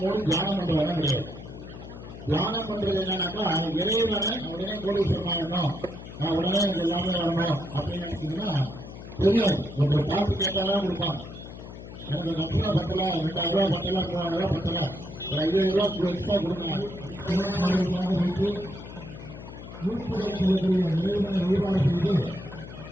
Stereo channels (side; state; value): left; noise; hum, 13 dB below the sound